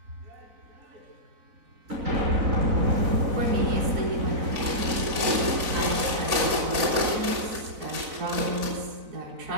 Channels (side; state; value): left; late; 4.0 ms